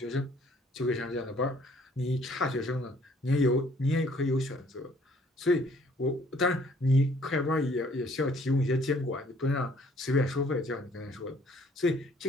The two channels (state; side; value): normal; both; correlation 0.60